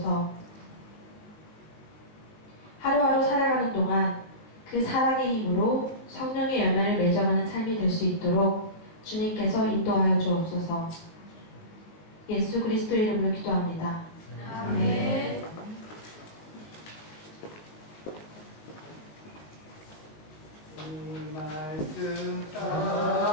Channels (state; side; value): late; right; 19 ms